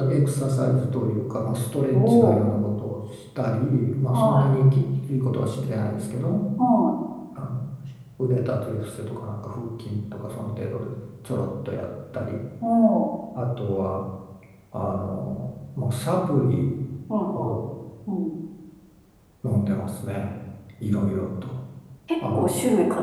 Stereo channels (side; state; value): both; identical; correlation 1.00